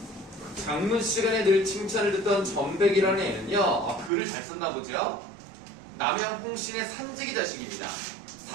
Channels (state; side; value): drops out; left; at 4.1 s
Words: 장문 시간에 늘 칭찬을 듣던 전백이라는 애는요, 글을 잘 썼나 보죠? 남양 홍신의 삼직이 자식입니다.